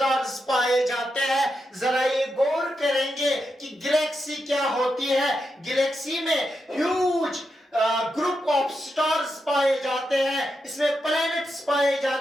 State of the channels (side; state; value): both; normal; correlation 0.86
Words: पाए जाते हैं। जरा ये गौर करेंगे कि गैलेक्सी क्या होती है। गैलेक्सी में ह्यूज ग्रुप ऑफ स्टार्स पाए जाते हैं, इसमें प्लैनेट्स पाए